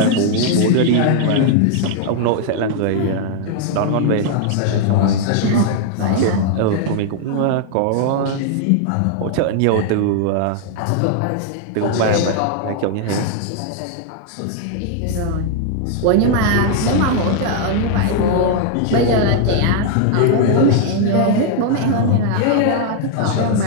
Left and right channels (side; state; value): both; different; correlation 0.00